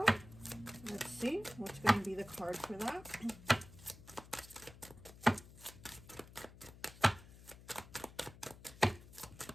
Let's see what's going to be the card for that.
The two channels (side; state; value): left; noise; hum, 18 dB below the sound